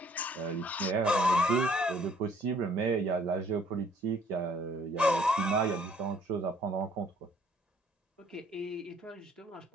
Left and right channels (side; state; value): both; normal; correlation 0.60